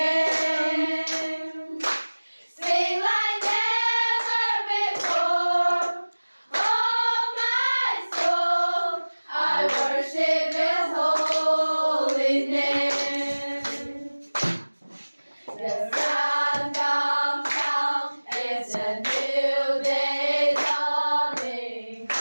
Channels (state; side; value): inverted; both; correlation -1.00